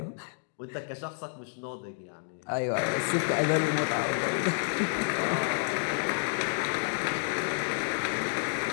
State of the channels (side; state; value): right; silent; digital silence